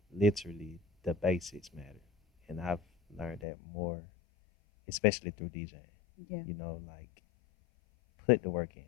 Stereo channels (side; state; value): right; drops out; at 3.5 s